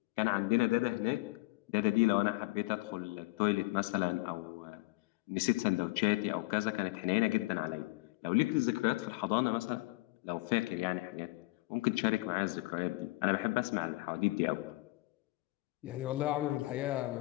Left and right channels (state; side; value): quieter; right; 22.2 dB